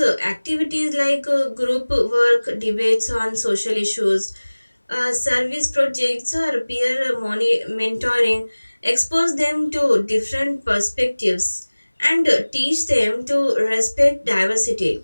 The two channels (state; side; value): inverted; both; correlation -1.00